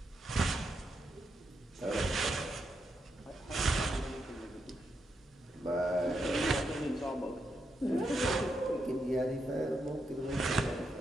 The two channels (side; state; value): both; normal; correlation 0.82